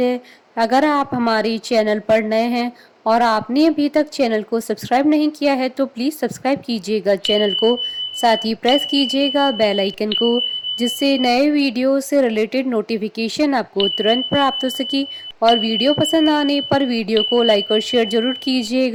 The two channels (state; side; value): identical; both; correlation 1.00